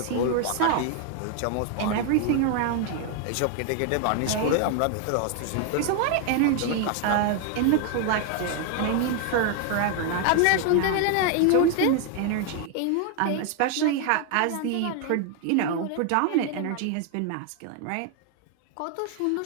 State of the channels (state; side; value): different; both; correlation 0.00